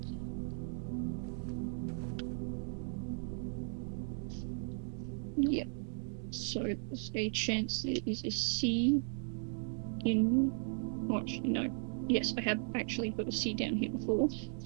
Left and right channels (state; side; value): silent; left; 53 dB below the other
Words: Yep. So there's a chance there is a C in. Oh, actually, no. Yes, I have actually put a C down here before.